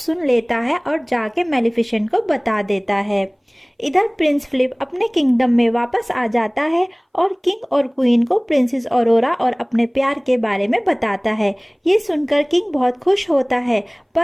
लेता है और जाके मैलेफिसेंट को बता देता है। इधर प्रिंस फिलिप अपने किंगडम में वापस आ जाता है और किंग और क्वीन को प्रिंसेस ऑरोरा और अपने प्यार के बारे में बताता है। ये सुनकर किंग बहुत खुश होता है,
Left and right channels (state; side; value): identical; both; correlation 1.00